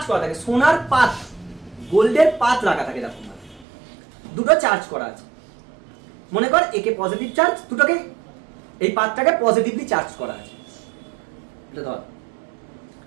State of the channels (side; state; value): left; drops out; at 3.7 s